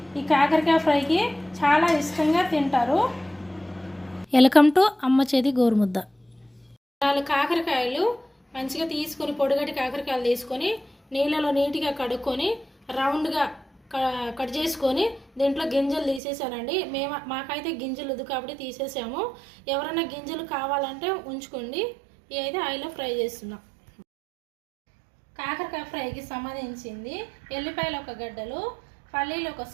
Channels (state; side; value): drops out; left; at 16.2 s